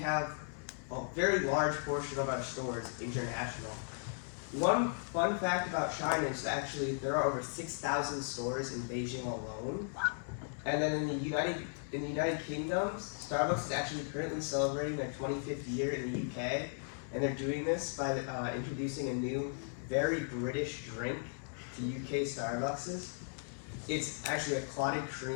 a very large portion of our stores international. One fun fact about China is actually there are over 6,000 stores in Beijing alone. And then in the United Kingdom, Starbucks is actually currently celebrating their 25th year in the UK, and they're doing this by introducing a new, very British drink to UK Starbuckses. It's actually a clotted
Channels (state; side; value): silent; right; digital silence